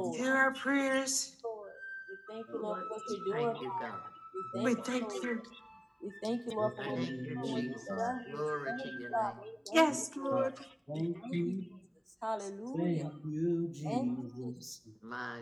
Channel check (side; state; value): both; identical; correlation 1.00